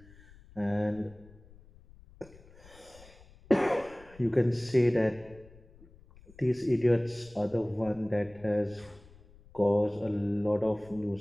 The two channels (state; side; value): noise; left; rumble, 24 dB below the sound